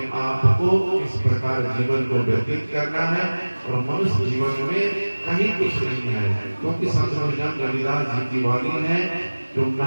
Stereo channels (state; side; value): inverted; both; correlation -1.00